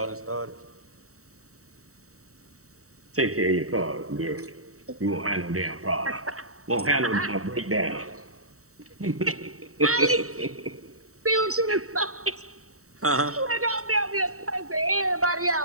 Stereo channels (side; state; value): left; late; 0.64 ms